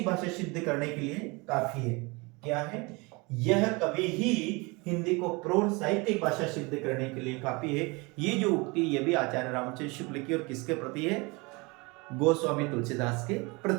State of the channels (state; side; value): quieter; left; 26.8 dB